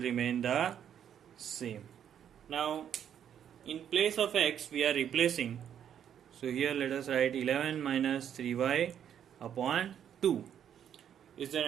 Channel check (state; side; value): quieter; left; 9.2 dB